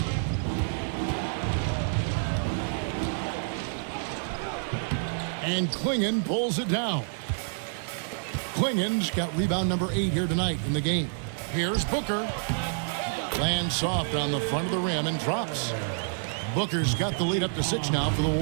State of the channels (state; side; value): silent; left; digital silence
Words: And Klingon pulls it down. Klingon's got rebound number 8 here tonight in the game. Here's Booker. Lands soft on the front of the rim and drops. Booker's got the lead up to 6 now for the